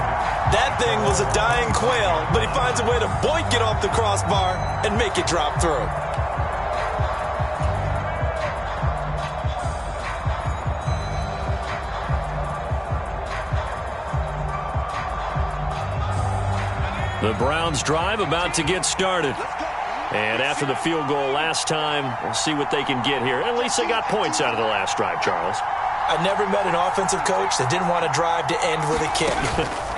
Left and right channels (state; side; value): identical; both; correlation 1.00